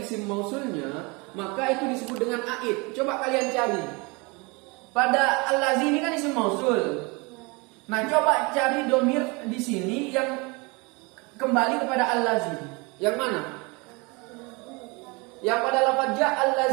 isim mausulnya, maka itu disebut dengan a'id. Coba kalian cari. Pada allazi ini kan isim mausul. Nah, coba cari domir di sini yang kembali kepada allazi. Yang mana? Yang pada lafaz ja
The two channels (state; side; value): quieter; left; 27.9 dB